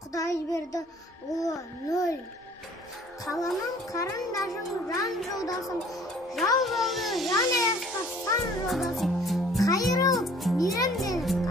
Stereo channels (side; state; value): both; normal; correlation 0.54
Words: Құдай берді ұлы нөл. Қаламым қарындашым, жан жолдасым, жау болды жан аясқа сан жолдасым. Қайырылып мейрамденіп